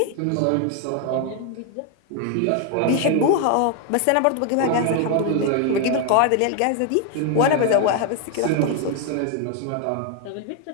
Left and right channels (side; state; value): both; different; correlation 0.01